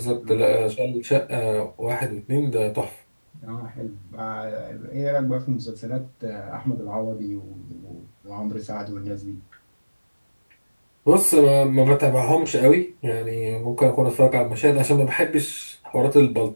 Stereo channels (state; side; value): inverted; both; correlation -1.00